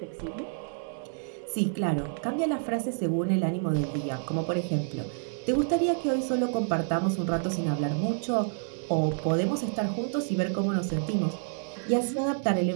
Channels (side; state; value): left; silent; 59 dB below the other